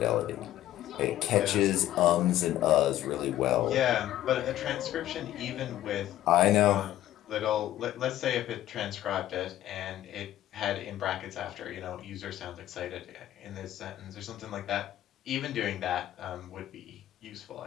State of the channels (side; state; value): right; quieter; 13.3 dB